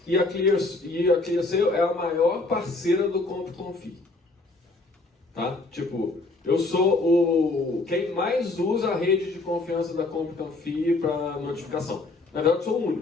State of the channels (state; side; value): quieter; right; 3.2 dB